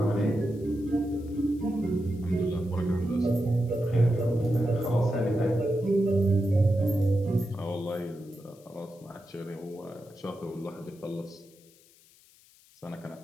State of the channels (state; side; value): noise; left; hiss, 28 dB below the sound